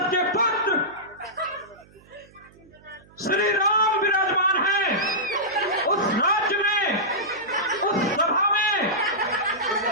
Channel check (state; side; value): noise; right; hum, 27 dB below the sound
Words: के पुत्र श्री राम विराजमान है, उस राज्य में, उस सभा में